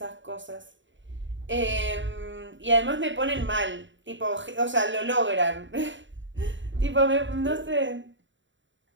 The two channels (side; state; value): left; late; 0.55 ms